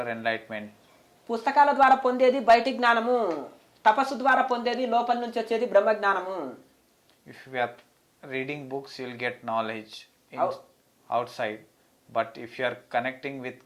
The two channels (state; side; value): identical; both; correlation 1.00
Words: enlightenment. పుస్తకాల ద్వారా పొందేది బయటి జ్ఞానము, తపస్సు ద్వారా పొందేది లోపల నుంచి వచ్చేది బ్రహ్మ జ్ఞానము. If you are reading books, you will get knowledge outside. But if you are connecting with